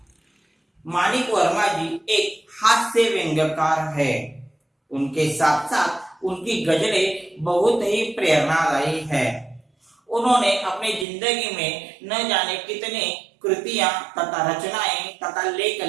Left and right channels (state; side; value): drops out; left; at 11.1 s